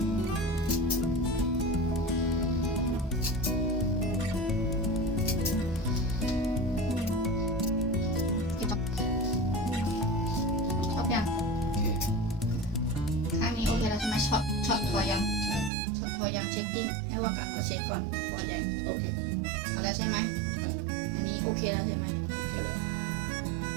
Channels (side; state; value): left; drops out; at 15.7 s